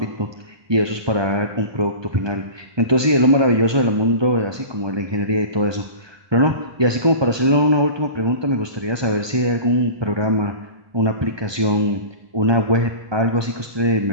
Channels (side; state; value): left; late; 1.2 ms